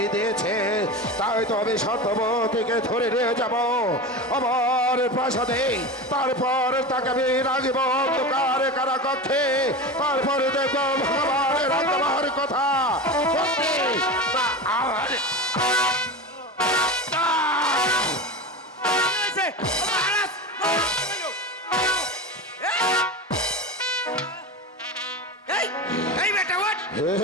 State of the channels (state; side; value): normal; both; correlation 0.26